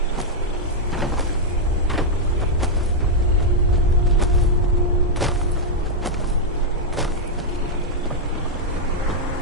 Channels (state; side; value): normal; both; correlation -0.03